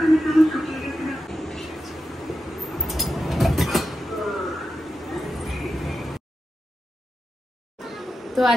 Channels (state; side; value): normal; both; correlation 0.89